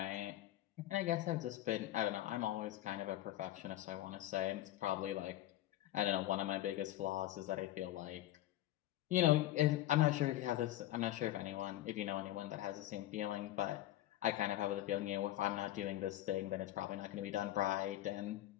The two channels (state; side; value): quieter; right; 14.5 dB